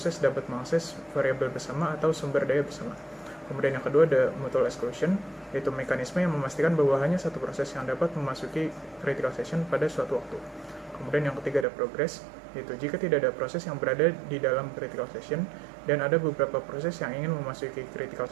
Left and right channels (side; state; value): left; drops out; at 11.7 s